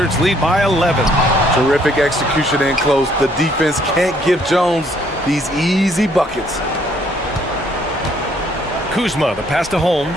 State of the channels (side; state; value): both; normal; correlation 0.65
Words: lead by 11. Terrific execution in close. The defense can't give Jones these easy buckets. Kuzma, the pass to